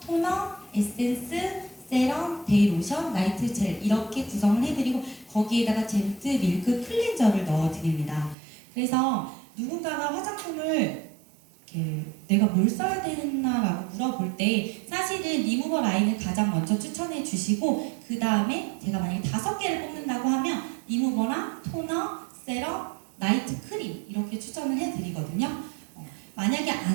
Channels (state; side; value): drops out; left; at 8.3 s